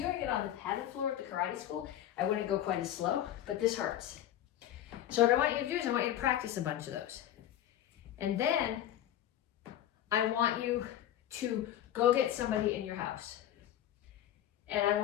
it on the padded floor at the karate school, I wouldn't go quite as slow, but this hurts. So what I want you to do is I want you to practice a bunch of those. And then I want you to go get somebody in your house. And I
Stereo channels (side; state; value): right; quieter; 11.8 dB